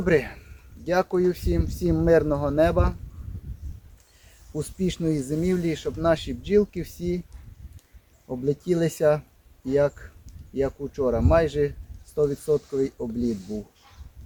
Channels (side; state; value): both; identical; correlation 1.00